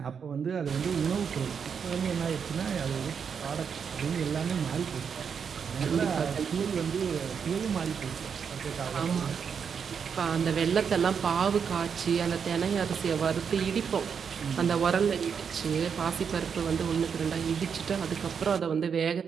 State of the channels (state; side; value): quieter; left; 6.7 dB